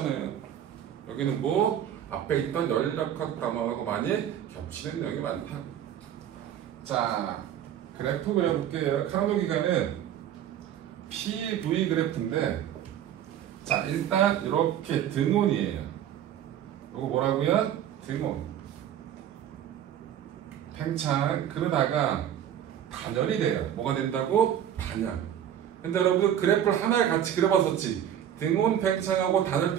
여기는 뭐 앞에 있던 열역학 단어하고 많이 겹치는 내용이 많다고. 자, 그래프 그려볼게요. 카르노 기관은 PV 그래프인데 자, 일단 이렇게 등온이에요. 이거 뭐라고요? 등온. 팽창 그러다가 단열이 돼요. 뭐가 된다고? 단열. 근데 여러분 그래프를 하나에 같이 그려봤었지. 등온 팽창하고 단열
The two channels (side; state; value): left; quieter; 10.3 dB